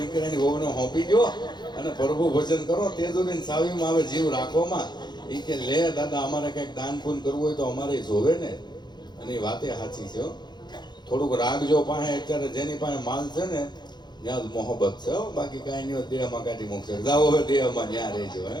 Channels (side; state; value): right; late; 0.21 ms